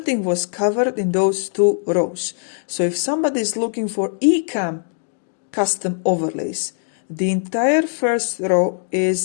was covered in those two rows. So if somebody is looking for eCam custom overlays, the entire first row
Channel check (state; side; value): silent; right; 64 dB below the other